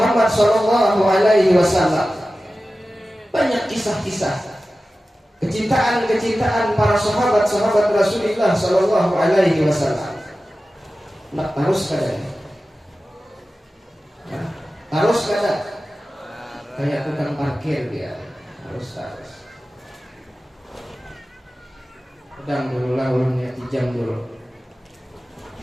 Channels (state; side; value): normal; both; correlation 0.95